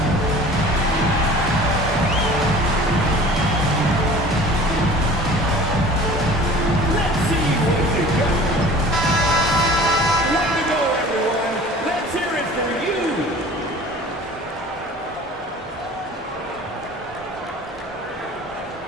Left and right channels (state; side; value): normal; both; correlation 0.44